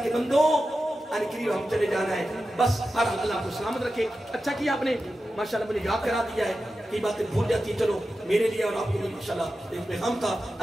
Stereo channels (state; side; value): normal; both; correlation 0.92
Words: کے بندو یعنی قریب ہم چلے جانا ہے بس ہر اللہ کو سلامت رکھے اچھا کیا آپ نے ماشاءاللہ مجھے یاد کرا دیا ہے کئی باتیں بھول جاتی ہیں چلو میرے لیے اور آپ کو بھی ماشاءاللہ ایک پیغام تھا